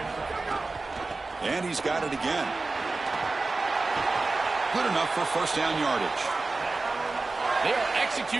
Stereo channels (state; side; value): quieter; left; 3.5 dB